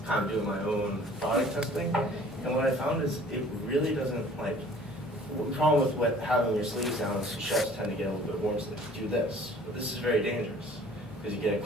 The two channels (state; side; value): normal; both; correlation 0.51